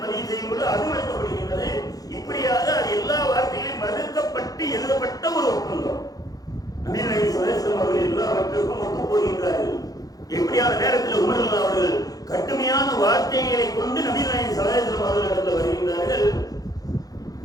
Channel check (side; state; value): right; late; 0.18 ms